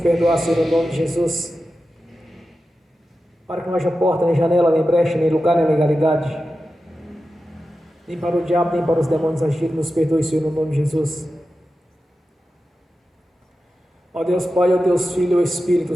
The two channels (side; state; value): both; normal; correlation 0.92